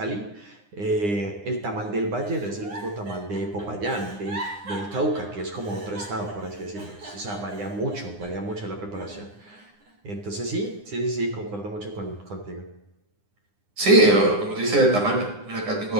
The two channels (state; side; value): late; left; 9.8 ms